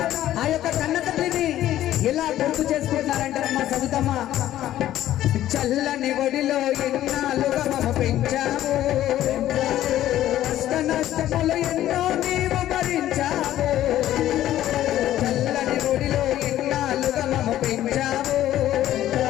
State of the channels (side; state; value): right; quieter; 13.1 dB